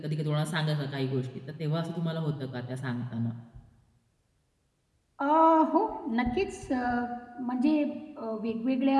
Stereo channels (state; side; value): identical; both; correlation 1.00